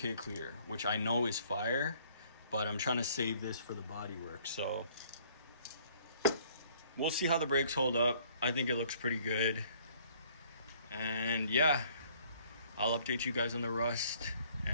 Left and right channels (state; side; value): inverted; both; correlation -0.60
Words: clear, which I know is fire, but I'm trying to save this for the bodywork. So we'll see how the brakes hold up. I think it looks pretty good. And yeah, I'll update you guys on the rust.